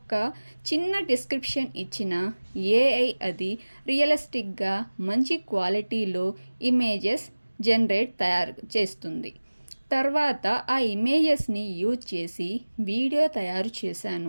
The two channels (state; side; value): inverted; both; correlation -1.00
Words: చిన్న డిస్క్రిప్షన్ ఇచ్చిన ఏఐ అది రియలిస్టిక్గా మంచి క్వాలిటీలో ఇమేజెస్ తయారు చేస్తుంది. తర్వాత ఆ ఇమేజెస్ని యూజ్ చేసి వీడియో తయారు